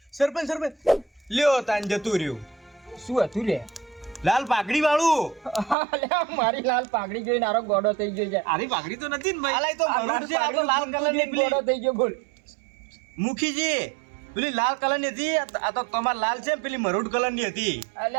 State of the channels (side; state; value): left; drops out; at 5.8 s